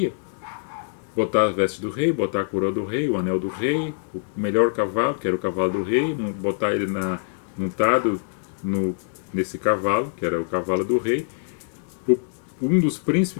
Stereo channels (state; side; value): silent; right; digital silence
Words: Botar as vestes do rei, botar a coroa do rei, o anel do rei, o melhor cavalo, que era o cavalo do rei, botar ele montado nesse cavalo, que era o cavalo do rei. Um dos